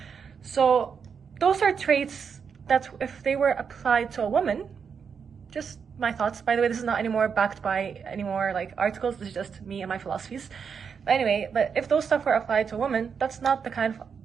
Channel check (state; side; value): quieter; left; 6.5 dB